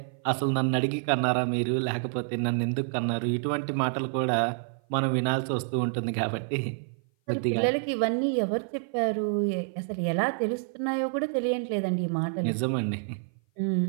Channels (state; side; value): silent; left; 56 dB below the other